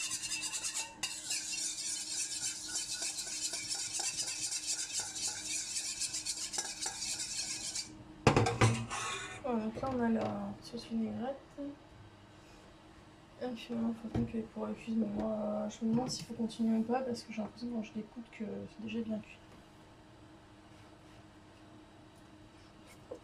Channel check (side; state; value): both; identical; correlation 1.00